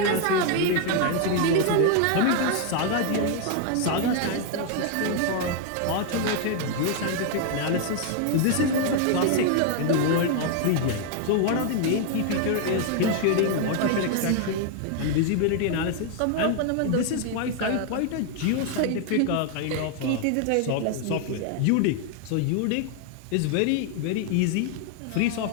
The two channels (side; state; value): both; different; correlation 0.00